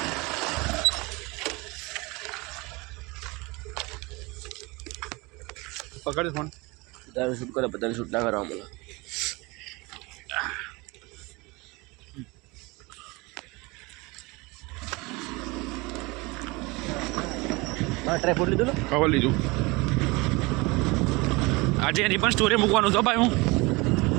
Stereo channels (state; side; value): quieter; left; 24.6 dB